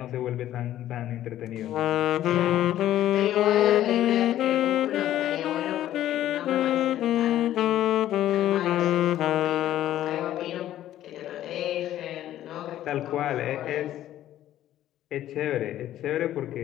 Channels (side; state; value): right; quieter; 12.8 dB